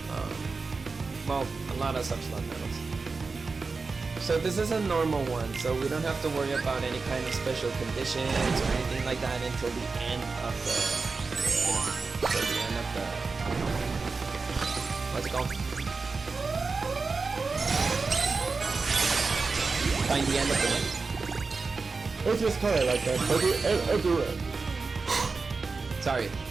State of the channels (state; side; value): quieter; left; 4.3 dB